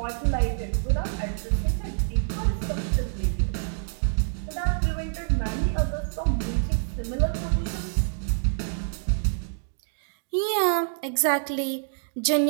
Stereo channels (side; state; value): left; silent; digital silence